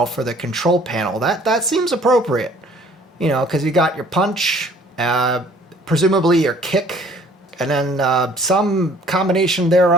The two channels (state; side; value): normal; both; correlation 0.56